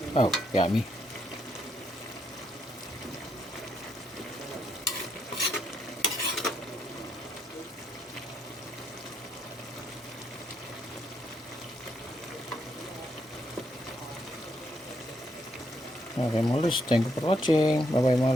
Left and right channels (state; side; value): normal; both; correlation 0.77